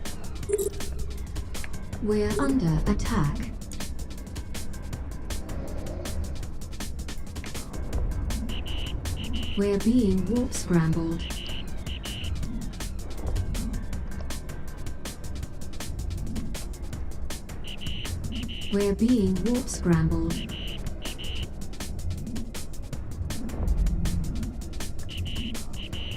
We're under attack. We're being warp scrambled. We're being warp scrambled.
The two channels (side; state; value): both; identical; correlation 1.00